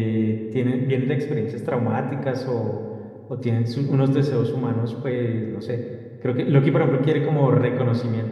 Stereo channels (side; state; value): both; identical; correlation 1.00